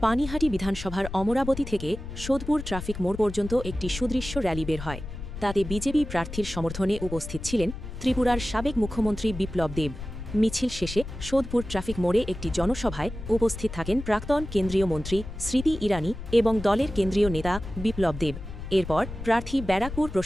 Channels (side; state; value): left; noise; rumble, 10 dB below the sound